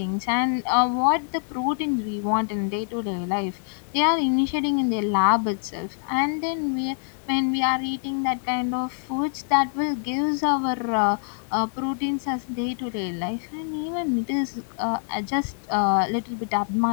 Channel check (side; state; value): right; silent; 59 dB below the other